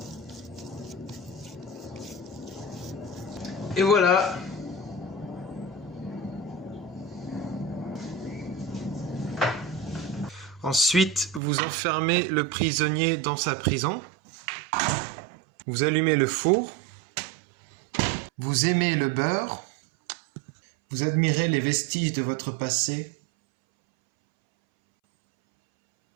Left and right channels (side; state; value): left; drops out; at 11.4 s